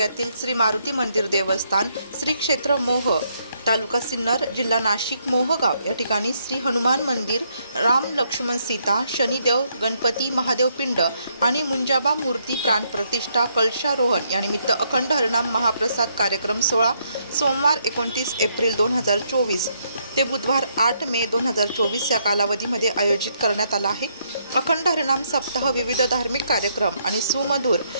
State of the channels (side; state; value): both; inverted; correlation -0.74